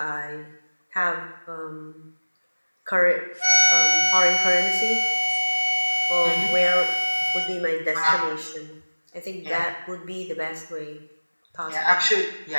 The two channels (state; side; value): inverted; both; correlation -1.00